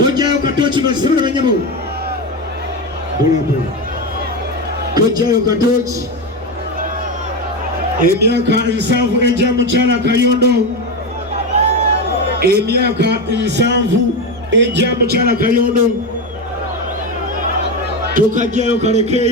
katochi basibira banyabo bulabu tojayo katochi emyaka 7 ejja mukyala Kayondo emyaka 7 ejja mukyala Kayondo tukajjayo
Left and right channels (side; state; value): both; normal; correlation 0.15